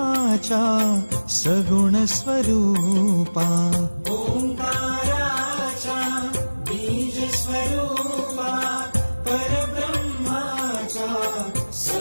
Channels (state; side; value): inverted; both; correlation -1.00